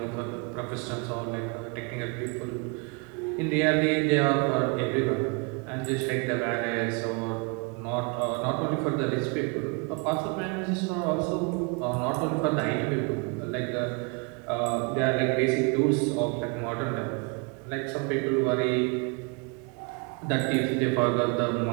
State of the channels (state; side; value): quieter; left; 32.6 dB